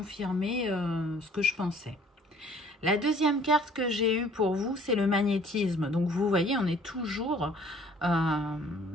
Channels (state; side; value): normal; both; correlation 0.55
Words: ce que je pensais. La deuxième carte que j'ai eue pour vous, c'est le magnétisme. Donc, vous voyez, on est toujours